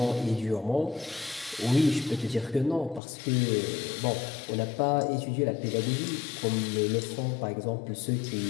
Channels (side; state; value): right; drops out; at 3.0 s